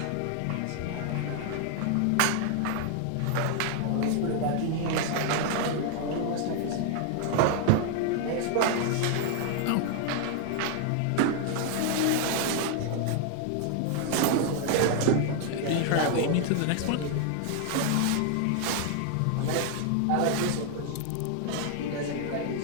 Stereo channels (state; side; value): different; both; correlation 0.00